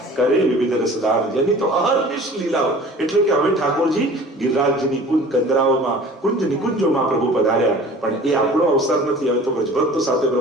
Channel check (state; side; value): normal; both; correlation 0.45